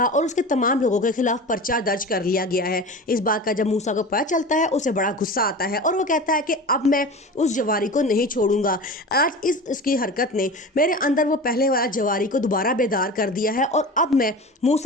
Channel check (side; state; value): both; normal; correlation 0.32